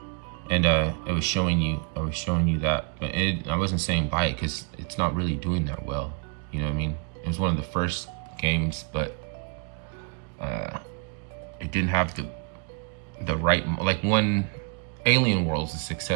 And I was showing you that, but I wasn't saying buy it because it's not really doing that well. You know what I mean? It was one of the first games, but it didn't have the right, like, one Alien Worlds is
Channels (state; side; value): quieter; left; 38.5 dB